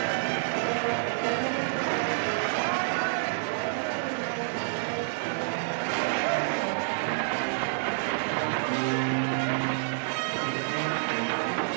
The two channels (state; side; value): silent; left; digital silence